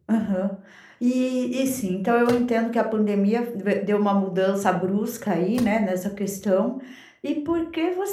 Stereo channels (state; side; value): identical; both; correlation 1.00